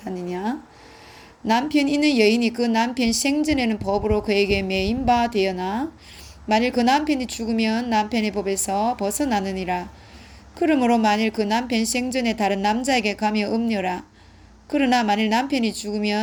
남편 있는 여인이 그 남편 생전에는 법으로 그에게 매인 바 되어나 만일 그 남편이 죽으면 남편의 법에서 벗어나느니라. 그러므로 만일 그 남편 생전에 다른 남자에게 가며 음녀라. 그러나 만일 남편이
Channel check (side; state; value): both; identical; correlation 1.00